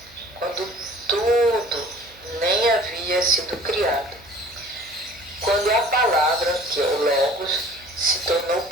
quando tudo nem havia sido criado. Quando a palavra, que é o Logos, se tornou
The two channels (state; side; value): noise; right; hum, 26 dB below the sound